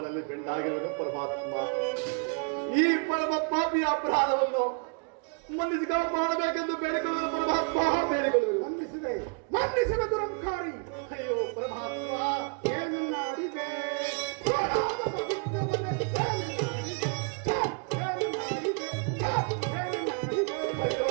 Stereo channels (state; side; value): quieter; left; 37.0 dB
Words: ಬೆಂಡಾಗಿರುವ ಪರಮಾತ್ಮ ಈ ಪರಮ ಪಾಪಿಯ ಅಪರಾಧವನ್ನು ಮನ್ನಿಸಿ ಮಾಡಬೇಕೆಂದು ಬೇಡಿಕೊಳ್ಳುವುದು ಪರಮಾತ್ಮ, ಬೇಡಿಕೊಳ್ಳುವುದು. ಮನ್ನಿಸಿದ ದುರಂಕಾರಿ. ಅಯ್ಯೋ ಪರಮಾತ್ಮ, ಏನನ್ನ ಅಡಿಗೆ